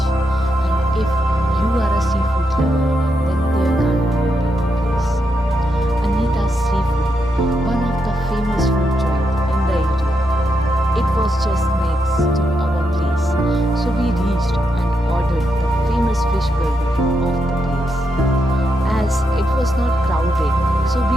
and if you are a seafood lover, then there can't be a better place. Anita's Seafood, one of the famous food joints in the area. It was just next to our place, so we reached and ordered the famous fish burger of the place. As it was not crowded, so we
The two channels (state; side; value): normal; both; correlation 0.83